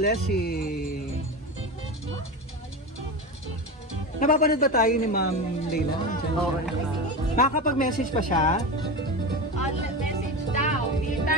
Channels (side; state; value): both; normal; correlation 0.23